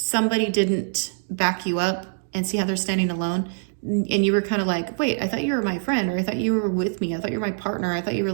didn't back you up and see how they're standing alone. And you were kind of like, wait, I thought you were my friend, or I thought you were with me. I thought you were my partner. I thought you were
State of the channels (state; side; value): silent; left; digital silence